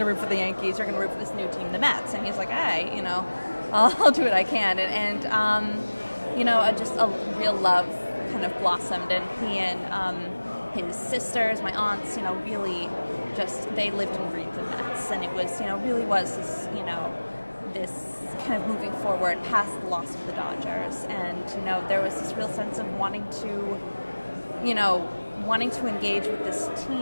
root for the Yankees. You're going to root for this new team, the Mets. And he's like, hey, I'll do what I can, and just a real love kind of blossomed, and he and his sisters, my aunts, really just they lived and breathed the Mets, and it was really was this this kind of moving forward past the loss of the Dodgers, and there was this real sense of wanting to engage with this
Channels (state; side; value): inverted; both; correlation -1.00